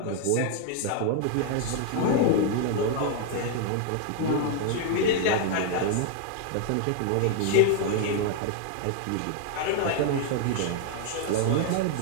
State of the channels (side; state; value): both; different; correlation 0.00